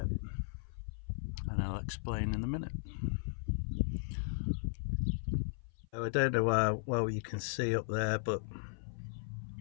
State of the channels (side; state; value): right; silent; 53 dB below the other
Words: and I'll explain in a minute. So I don't know how well you can see up there, but